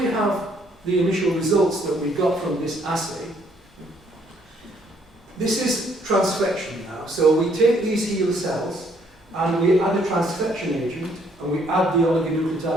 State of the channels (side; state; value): both; normal; correlation 0.66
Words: have the initial results that we got from this assay. This is transfection now. So we take these HeLa cells and we add a transfection agent, and we add the